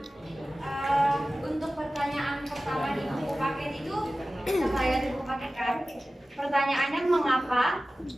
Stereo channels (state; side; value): normal; both; correlation 0.96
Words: untuk pertanyaan pertama di buku paket itu saya di buku paket kan. Pertanyaannya, mengapa